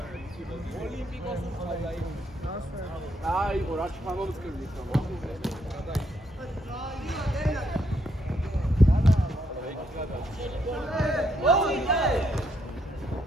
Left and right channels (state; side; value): normal; both; correlation 0.74